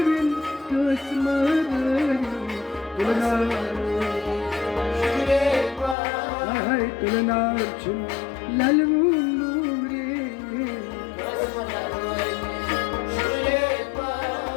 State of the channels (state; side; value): drops out; right; at 6.0 s